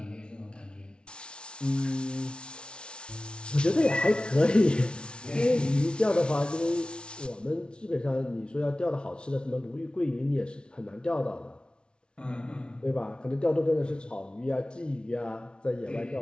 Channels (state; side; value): late; right; 0.057 ms